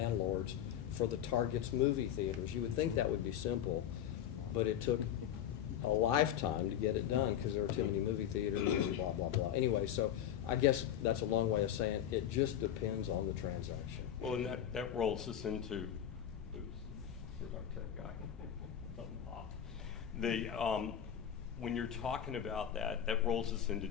for the Target's movie theaters. You would think that would be simple, but it took a lifetime to get it done because there were too many movie theaters and blah, blah, blah. Anyway, so I guess that's a long way of saying it just depends on the transaction. Well, and that rolls us into, where's our tech guy? Something popped. When you're talking about that rolls us into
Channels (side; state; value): right; quieter; 10.1 dB